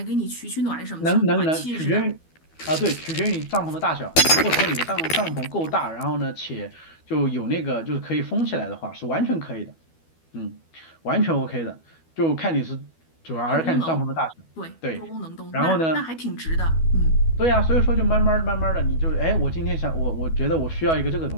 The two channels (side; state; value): right; late; 12 ms